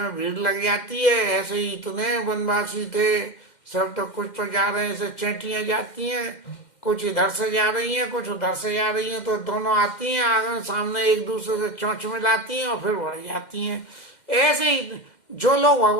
भीड़ लग जाती है, ऐसे ही इतने वनवासी थे सब, तो कुछ तो जा रहे हैं, ऐसे चेटियां जाती हैं, कुछ इधर से जा रही हैं, कुछ उधर से जा रही हैं, तो दोनों आती हैं आगे सामने, एक दूसरे से चोंच मिलाती हैं और फिर बढ़ जाती हैं। ऐसे ही जो लोग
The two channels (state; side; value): late; right; 2.1 ms